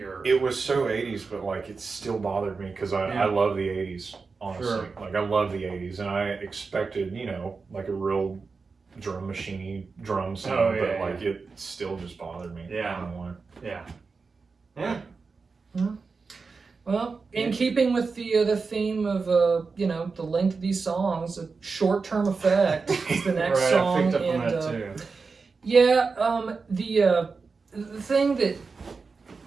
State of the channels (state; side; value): quieter; left; 4.6 dB